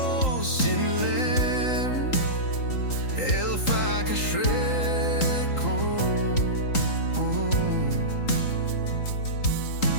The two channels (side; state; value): right; late; 3.8 ms